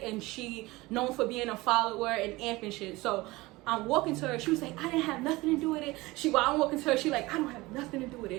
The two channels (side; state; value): left; quieter; 21.0 dB